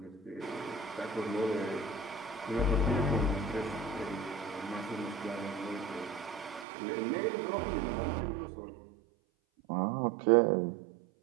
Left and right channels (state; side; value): drops out; left; at 6.7 s